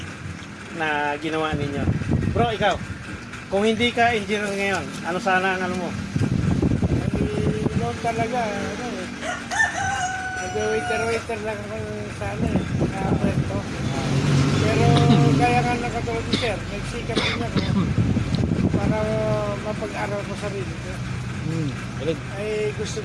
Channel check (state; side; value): identical; both; correlation 1.00